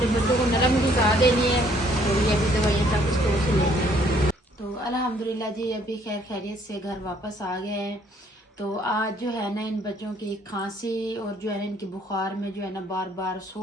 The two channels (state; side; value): normal; both; correlation 0.63